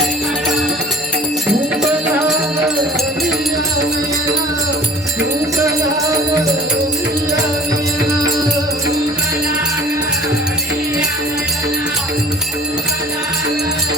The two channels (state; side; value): normal; both; correlation 0.48